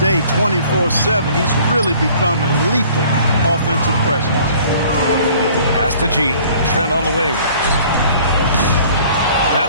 24/7. He's really become a lethal offensive presence. Pass to G. Trent on the wing.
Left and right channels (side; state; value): both; inverted; correlation -0.53